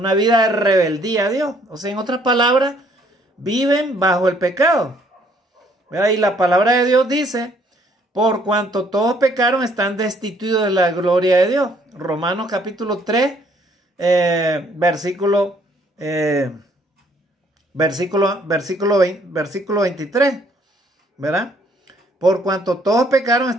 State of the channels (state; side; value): normal; both; correlation 0.64